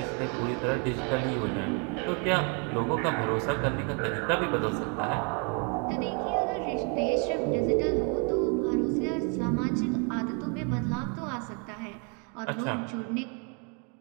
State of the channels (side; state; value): left; quieter; 37.1 dB